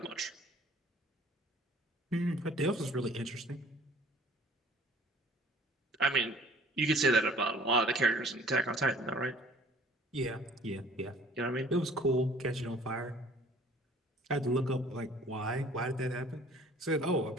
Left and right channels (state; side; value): normal; both; correlation 0.53